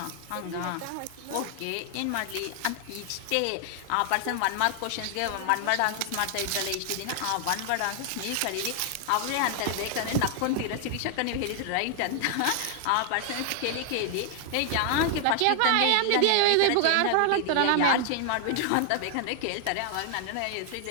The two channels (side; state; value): both; different; correlation 0.00